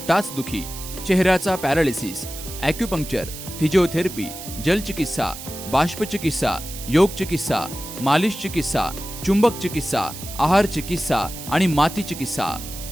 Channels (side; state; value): right; noise; hiss, 11 dB below the sound